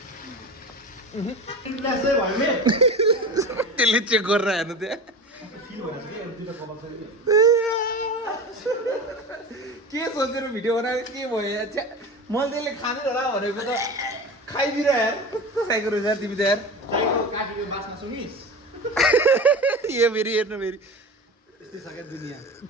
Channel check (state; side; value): normal; both; correlation 0.30